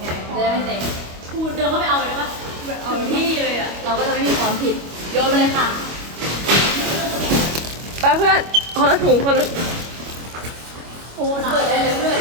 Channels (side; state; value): left; late; 25 ms